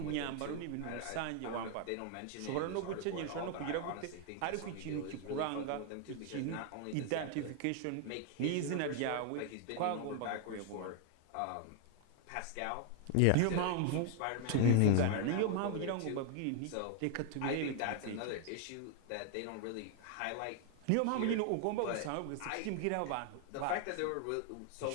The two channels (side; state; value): both; different; correlation 0.00